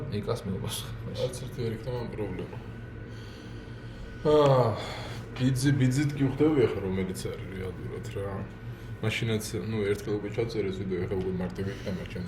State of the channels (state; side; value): identical; both; correlation 1.00